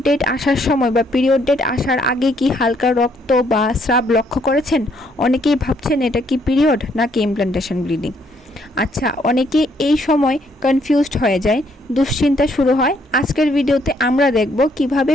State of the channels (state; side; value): normal; both; correlation 0.69